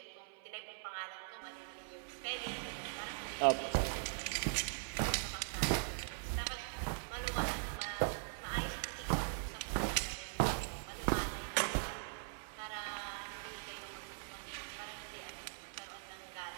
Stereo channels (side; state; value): left; silent; 50 dB below the other